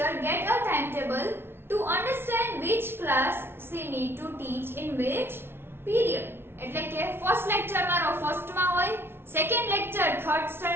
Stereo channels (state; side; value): late; left; 0.11 ms